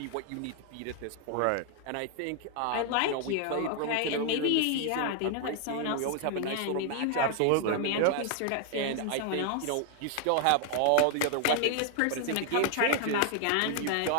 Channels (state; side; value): different; both; correlation 0.00